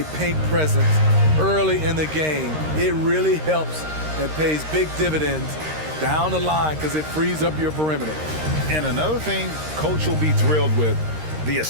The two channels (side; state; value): left; late; 13 ms